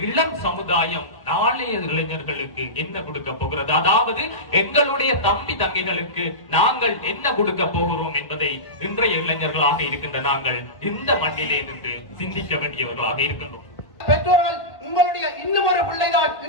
இளம் சமுதாயம் நாளைய இளைஞர்களுக்கு என்ன கொடுக்க போகிறது, அதாவது எங்களுடைய தம்பி தங்கைகளுக்கு நாங்கள் என்ன கொடுக்க போகிறோம் என்பதை இன்றைய இளைஞர்களாக இருக்கின்ற நாங்கள் இந்த மண்ணிலே நின்று சிந்திக்க வேண்டியவர்களாக இருக்கின்றோம். பெற்றோர்கள், உங்களுடைய இன்னும் ஒரு பிள்ளைதான்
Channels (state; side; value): late; right; 1.5 ms